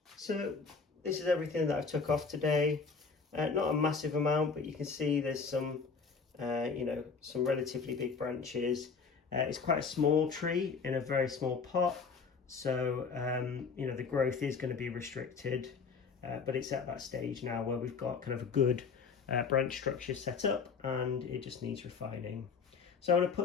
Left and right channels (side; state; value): right; quieter; 5.2 dB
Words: So this is everything that I've took off today. Not a massive amount, but you can see there's some some relatively big branches. It's quite a small tree in a very small pot, so the growth is going to be restricted, but it's at that stage now where we've got kind of a good branch structure set up and it just needs refining. So I'm going to